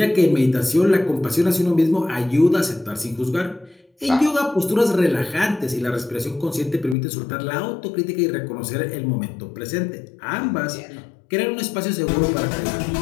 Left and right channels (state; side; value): drops out; right; at 7.0 s